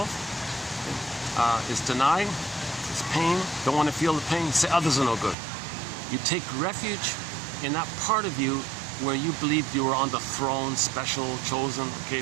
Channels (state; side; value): drops out; left; at 5.4 s